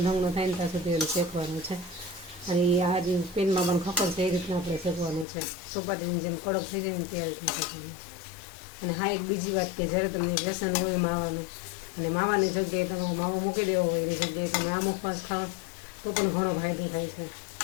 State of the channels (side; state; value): right; drops out; at 5.2 s